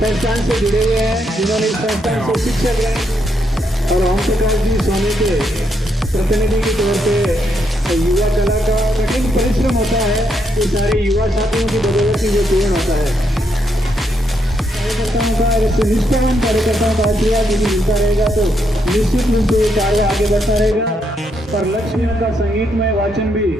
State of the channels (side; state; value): both; normal; correlation 0.77